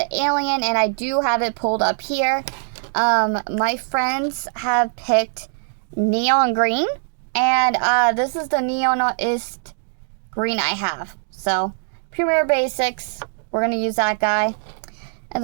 alien, and I do have it pulled up here. My friends have picked neon green, and this is the neonist green I have. So, Premier Basics, we're going to use that guy. And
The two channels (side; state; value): left; silent; digital silence